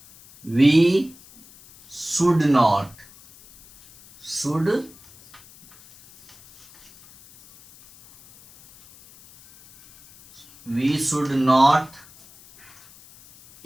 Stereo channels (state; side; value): noise; left; hiss, 25 dB below the sound